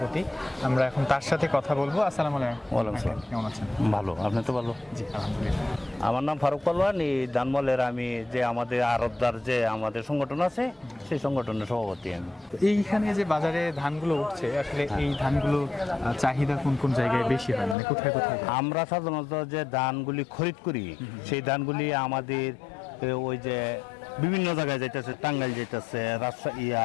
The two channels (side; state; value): right; drops out; at 17.8 s